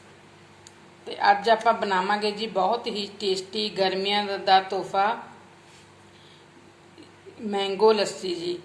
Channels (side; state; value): both; identical; correlation 1.00